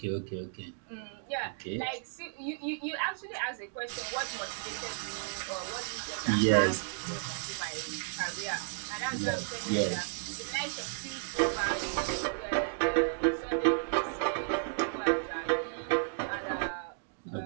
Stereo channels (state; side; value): silent; left; digital silence